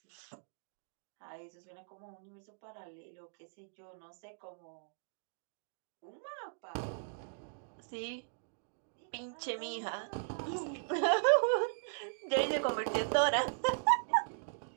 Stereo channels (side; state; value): left; silent; digital silence